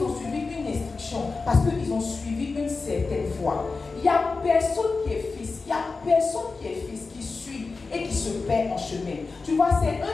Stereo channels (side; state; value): right; quieter; 4.1 dB